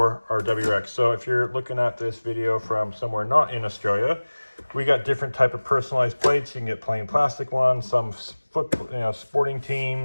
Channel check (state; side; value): inverted; both; correlation -1.00